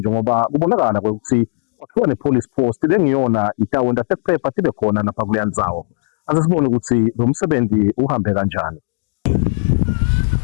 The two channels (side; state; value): right; silent; digital silence